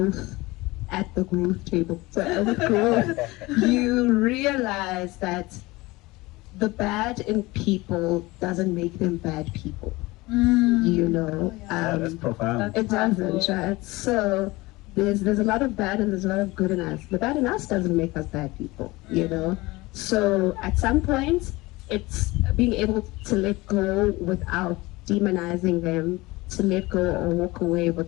at the growth table. So with growth, you realize that the bad in people doesn't make them bad people. That's profound. It doesn't, right? So there's a lot of bad and there's a lot of good in us. The bad in us doesn't make us bad people, So at some point, it's being able to let go without demonizing them, to let go or walk away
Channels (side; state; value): right; quieter; 21.2 dB